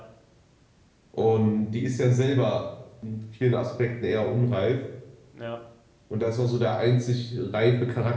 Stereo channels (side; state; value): both; identical; correlation 1.00